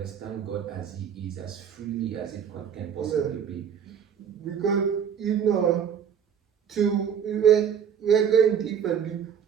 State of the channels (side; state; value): left; quieter; 7.9 dB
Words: God as He is, as freely as it can possibly be. Because, you know, we're going deeper,